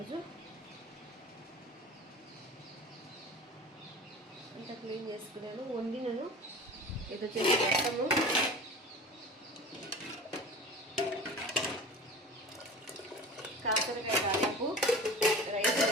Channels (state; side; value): normal; both; correlation 0.37